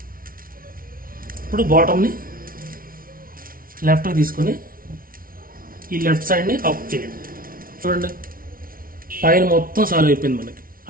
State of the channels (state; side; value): late; left; 0.42 ms